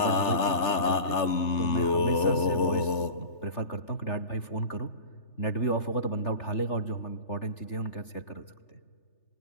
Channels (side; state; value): right; late; 3.4 ms